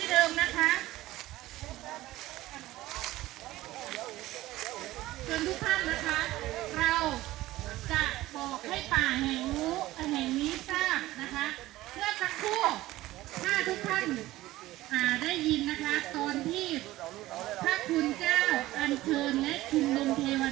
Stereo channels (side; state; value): left; quieter; 16.7 dB